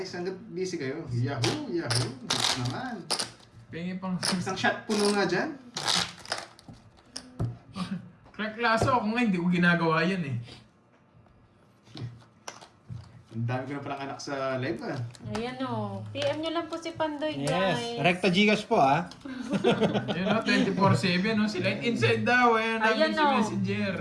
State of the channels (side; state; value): both; identical; correlation 1.00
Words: Hanggat busy kayo. Yahoo, yahoo. Nogso naman. Pengi pang Isang shot puno nga dyan. crack laso. Ako nga, hindi ko ginagawa yan eh. Ang dami ko na palang anak sa live ah. Ayan o. PM nyo lang po si Pandoy, Yes. guys. Recta Gcash po ha. Yan o, 24/7 o. Si Light Inside daw. Ayan Ayan, namin si o. Messenger.